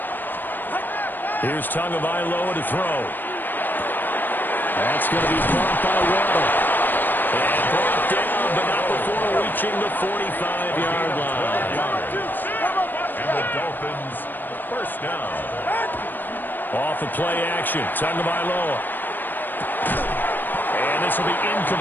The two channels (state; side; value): late; right; 0.091 ms